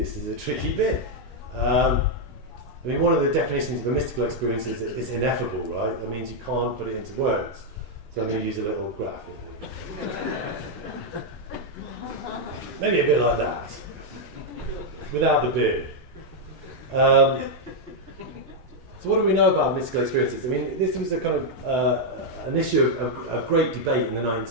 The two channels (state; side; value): normal; both; correlation -0.01